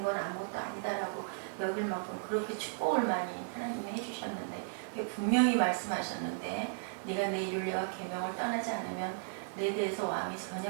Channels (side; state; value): left; silent; digital silence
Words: 건 아무것도 아니다라고 여길 만큼 그렇게 축복을 많이 하나님이 해주셨는데 분명히 말씀하셨는데 네가 내 율례와 계명을 떠나지 않으면 내 대에서 왕이